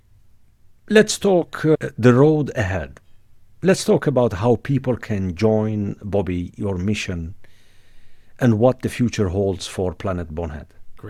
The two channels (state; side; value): identical; both; correlation 1.00